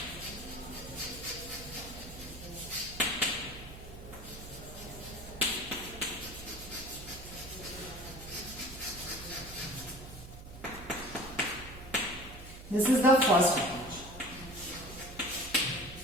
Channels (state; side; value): noise; right; hum, 14 dB below the sound